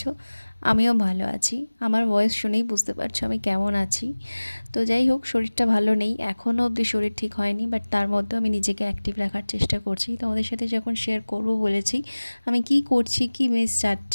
আমিও ভালো আছি। আমার ভয়েস শুনেই বুঝতে পারছো আমি কেমন আছি। তো যাই হোক, শরীরটা ভালো নেই, এখনও অবধি শরীর ঠিক হয়নি, বাট তার মধ্যেও আমি নিজেকে অ্যাক্টিভ রাখার চেষ্টা করছি। তোমাদের সাথে যখন শেয়ার করব বলেছি, আমি কি করছি, কি মিস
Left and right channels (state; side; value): inverted; both; correlation -1.00